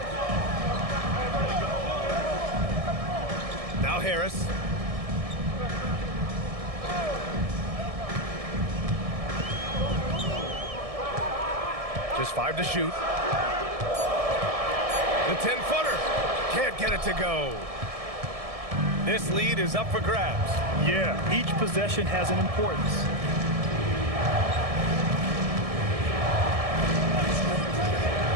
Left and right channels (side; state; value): left; late; 1.7 ms